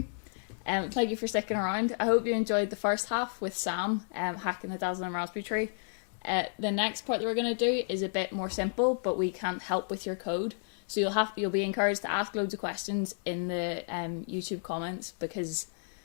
Thank you for sticking around. I hope you enjoyed the first half with Sam hacking the Dazzling Raspberry Tree. The next part that we're going to do is a bit more simple, but we can't help with your code. So you'll be encouraged to ask loads of questions in the YouTube comments, because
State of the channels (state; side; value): silent; right; digital silence